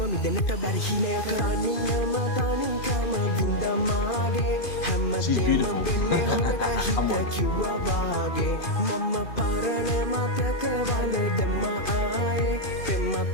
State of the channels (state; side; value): late; right; 2.5 ms